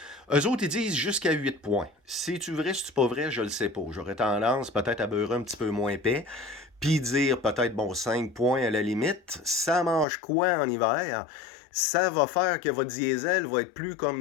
Eux autres, ils disent jusqu'à 8 points. C'est-tu vrai, c'est-tu pas vrai? Je le sais pas. J'aurais tendance peut-être à beurrer un petit peu moins épais, puis dire peut-être, bon, 5 points à la limite. Ça mange quoi en hiver? Ça va faire que votre diesel va être plus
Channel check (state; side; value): drops out; right; at 10.1 s